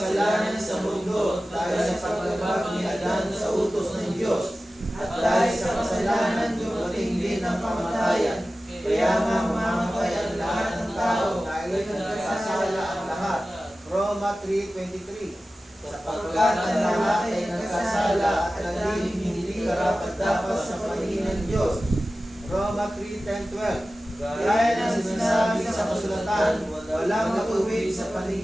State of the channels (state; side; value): normal; both; correlation 0.95